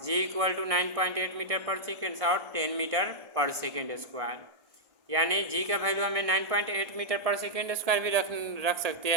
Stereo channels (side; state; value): left; late; 1.6 ms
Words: g equal to 9.8 metre पर second और 10 metre पर second square. यानी g का value हमें 9.8 metre पर second square भी रख सकते